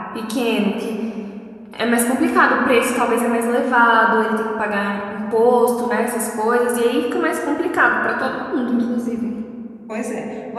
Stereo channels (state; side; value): identical; both; correlation 1.00